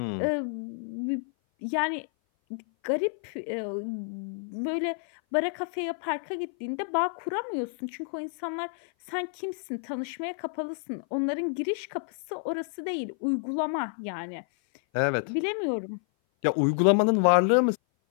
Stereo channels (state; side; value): silent; right; 56 dB below the other